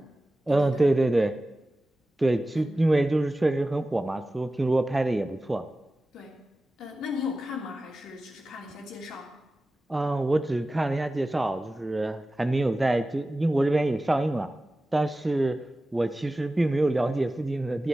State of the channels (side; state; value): both; normal; correlation 0.95